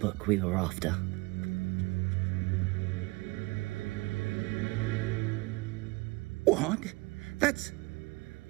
we were after. What? That's...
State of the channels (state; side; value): quieter; left; 24.5 dB